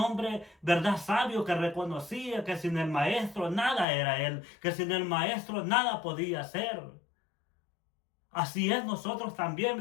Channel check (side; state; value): right; drops out; at 3.9 s